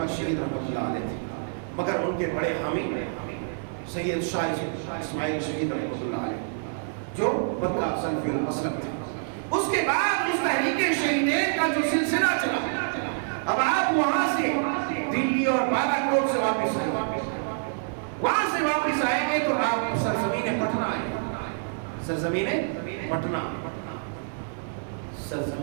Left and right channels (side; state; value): left; silent; digital silence